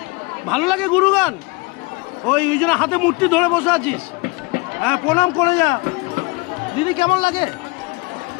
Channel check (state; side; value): quieter; right; 26.0 dB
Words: ভালো লাগে গুরুগান? ওই জন্য হাতে মূর্তি ধরে বসে আছিস? হ্যাঁ, প্রণাম করে যা। দিদি কেমন লাগে?